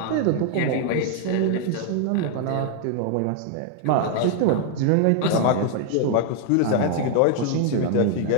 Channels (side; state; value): both; different; correlation 0.00